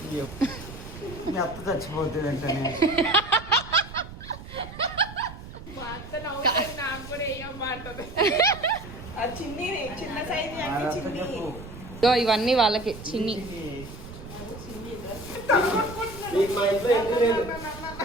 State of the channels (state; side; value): noise; right; rumble, 13 dB below the sound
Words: అత్త చచ్చిపోతుంది అంటే ఇవన్నీ వాళ్ళకి చిన్ని.